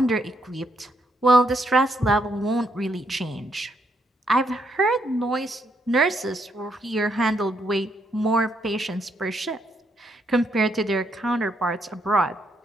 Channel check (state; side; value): normal; both; correlation 0.75